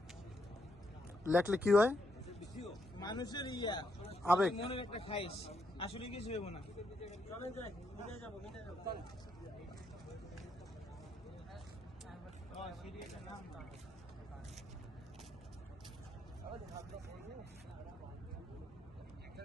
লেখলে কি হয়? মানুষের আবেগ, মনের একটা খাইশ, আসলে কিছু হইব না। চলেন যাই, মিটে যাবো, মিটে যাবো। সিরিয়ালের নাম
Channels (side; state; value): both; normal; correlation 0.77